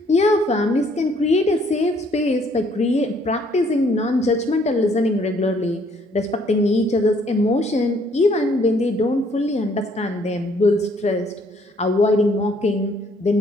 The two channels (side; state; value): both; normal; correlation 0.64